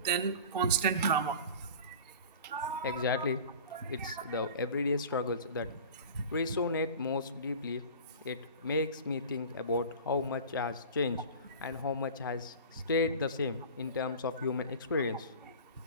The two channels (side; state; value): both; inverted; correlation -0.37